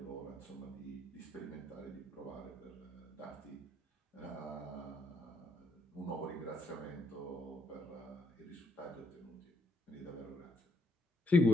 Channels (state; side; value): normal; both; correlation 0.71